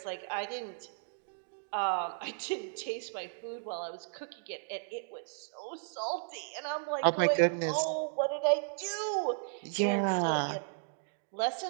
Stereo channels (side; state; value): left; silent; digital silence